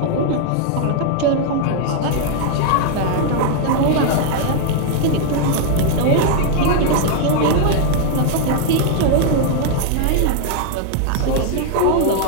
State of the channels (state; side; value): different; both; correlation 0.00